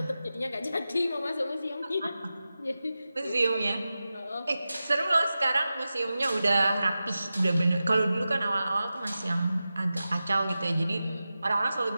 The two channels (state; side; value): inverted; both; correlation -0.94